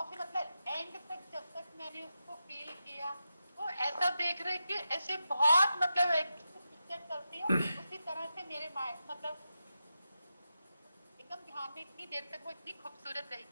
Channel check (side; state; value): both; inverted; correlation -0.89